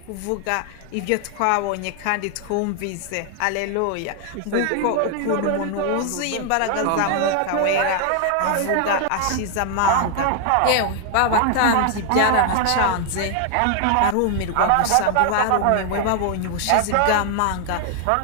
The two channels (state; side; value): different; both; correlation 0.00